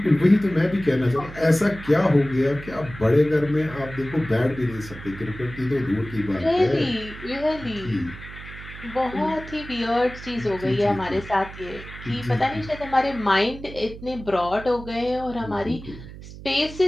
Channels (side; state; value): right; noise; hum, 14 dB below the sound